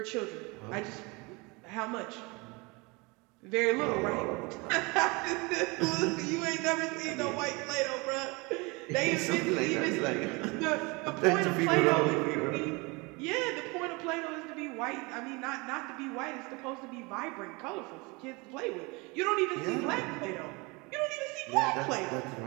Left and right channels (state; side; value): quieter; left; 26.9 dB